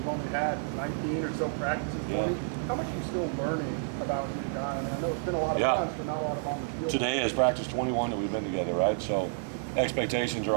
only had 19 or so practices. 20. How much are you still learning about your guy? I know it's been a lot of times, but not a lot of on the field. Today is practice 21 that we've been together, right? So expectations are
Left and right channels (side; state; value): left; silent; 55 dB below the other